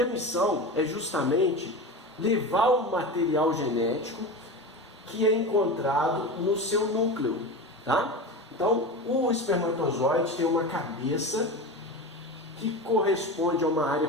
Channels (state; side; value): normal; both; correlation 0.26